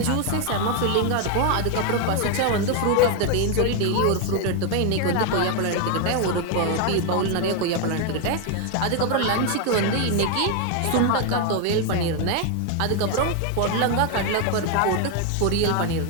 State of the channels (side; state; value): both; different; correlation 0.01